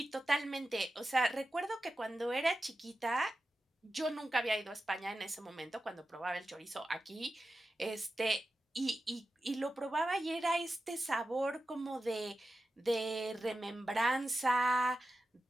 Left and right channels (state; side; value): normal; both; correlation 0.92